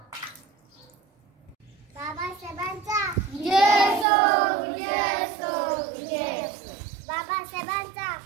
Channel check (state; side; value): drops out; left; at 4.0 s